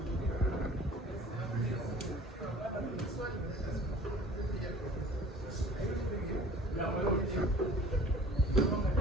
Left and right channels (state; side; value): normal; both; correlation 0.47